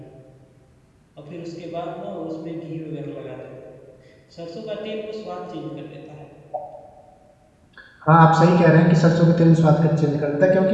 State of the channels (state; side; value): identical; both; correlation 1.00